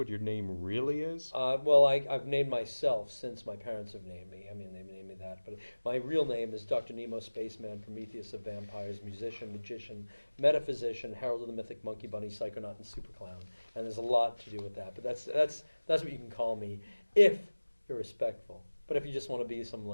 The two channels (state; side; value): inverted; both; correlation -1.00